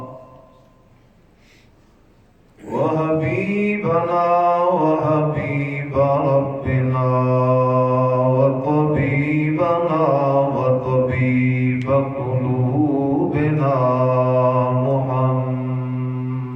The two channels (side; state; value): both; identical; correlation 1.00